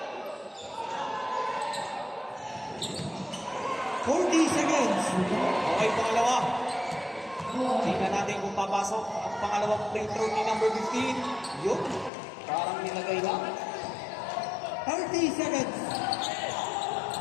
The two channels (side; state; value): right; drops out; at 12.1 s